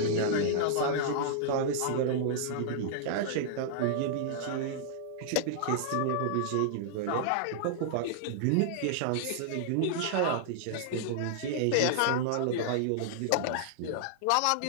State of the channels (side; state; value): both; different; correlation -0.01